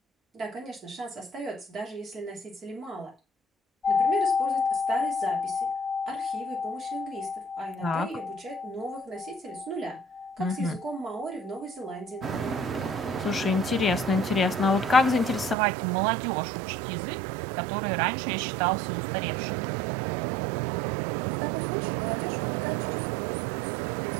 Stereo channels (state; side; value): drops out; left; at 15.6 s